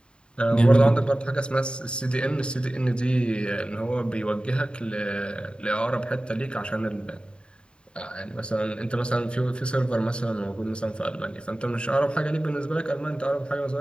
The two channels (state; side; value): late; right; 0.052 ms